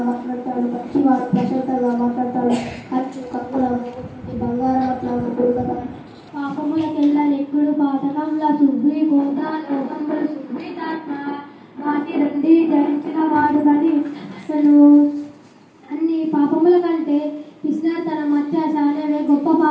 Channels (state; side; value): identical; both; correlation 1.00